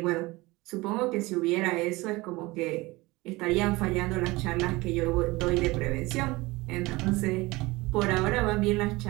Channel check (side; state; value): left; quieter; 21.7 dB